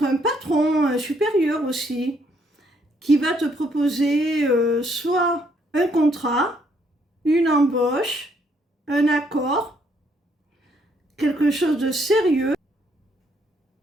un patron, un supérieur aussi, qui va te proposer soit un contrat, une embauche, un accord, quelque chose de sérieux,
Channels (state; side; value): normal; both; correlation 0.70